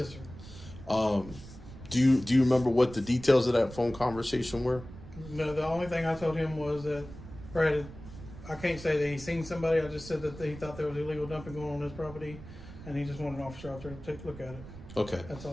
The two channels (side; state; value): right; noise; rumble, 15 dB below the sound